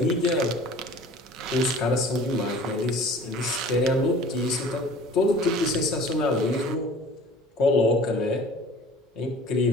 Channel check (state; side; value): normal; both; correlation 0.46